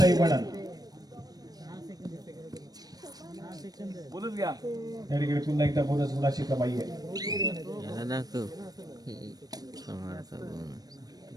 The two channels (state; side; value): late; left; 0.19 ms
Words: वणन. या ठिकाणी पुन्हा एकदा बोनस गुणाची कमाई आहे.